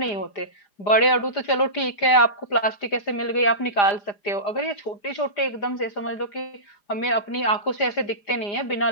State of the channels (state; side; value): late; right; 4.9 ms